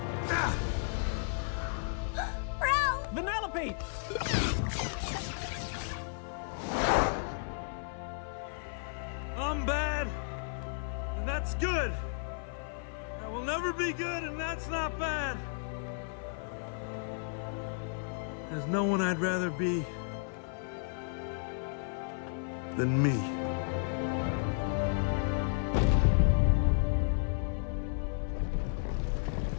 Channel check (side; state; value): right; silent; 56 dB below the other